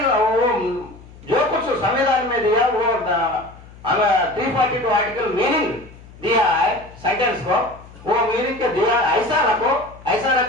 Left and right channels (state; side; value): noise; left; hum, 21 dB below the sound